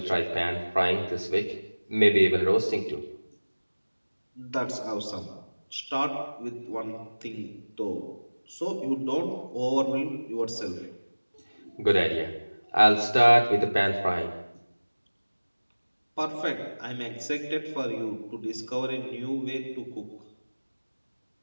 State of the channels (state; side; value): inverted; both; correlation -1.00